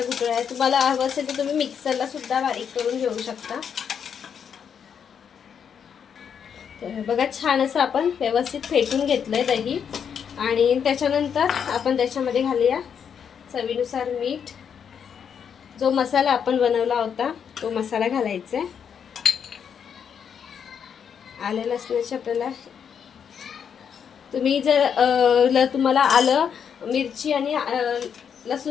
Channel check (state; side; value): quieter; right; 7.6 dB